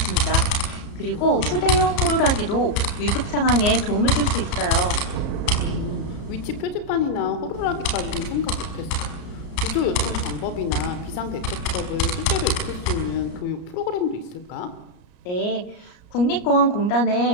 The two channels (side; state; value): right; late; 34 ms